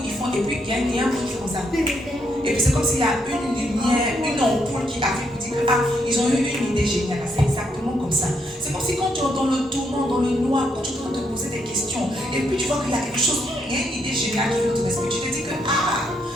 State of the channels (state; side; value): normal; both; correlation 0.76